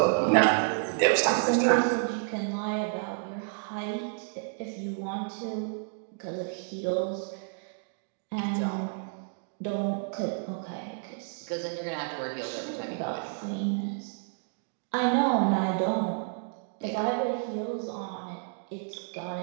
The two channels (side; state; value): left; silent; 58 dB below the other